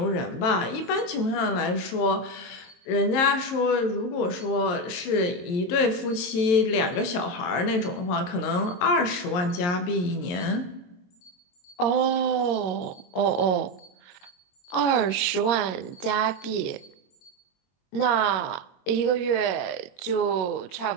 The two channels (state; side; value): late; right; 23 ms